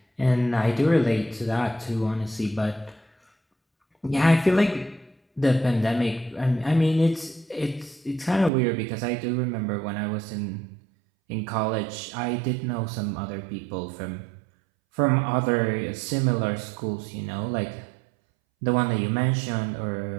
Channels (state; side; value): drops out; left; at 8.5 s